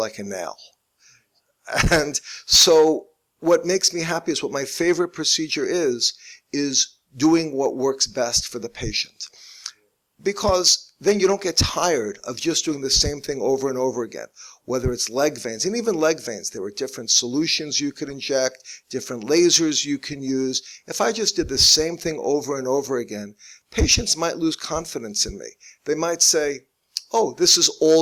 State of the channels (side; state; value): both; identical; correlation 1.00